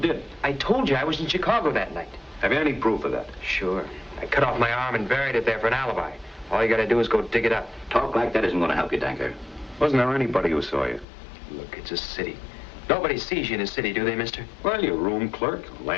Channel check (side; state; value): right; drops out; at 11.1 s